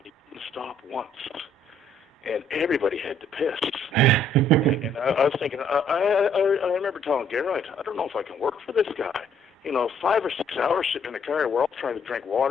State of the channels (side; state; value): both; normal; correlation 0.64